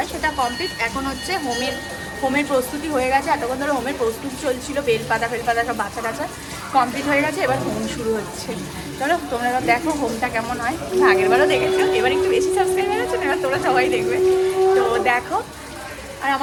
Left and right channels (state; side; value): identical; both; correlation 1.00